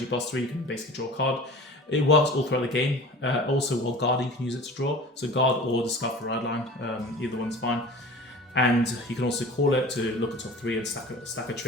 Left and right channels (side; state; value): both; normal; correlation 0.40